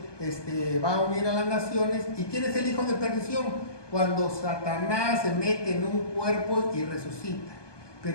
va a unir a las naciones. ¿Y quién es el hijo de perdición? Cuando Satanás se mete en un cuerpo y resucita.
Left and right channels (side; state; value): right; late; 1.2 ms